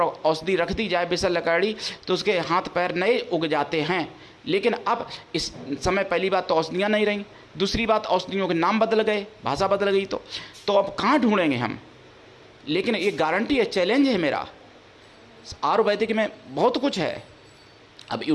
रख दी जाए विशल्यकरणी, तो उसके हाथ पैर नए उग जाते हैं। लेकिन अब इस समय पहली बात तो औषधियाँ नहीं रहीं, दूसरी बात औषधियों के नाम बदल गए, भाषा बदल गई। तो अब कहाँ ढूंढेंगे हम? लेकिन ये गारंटी है, चैलेंज है मेरा, आयुर्वेदिक में बहुत कुछ है। अब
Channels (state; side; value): identical; both; correlation 1.00